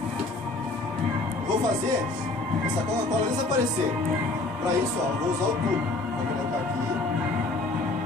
Vou fazer essa Coca-Cola desaparecer. Para isso, ó, vou usar o tubo. Vou colocar aqui.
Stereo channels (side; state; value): right; quieter; 3.1 dB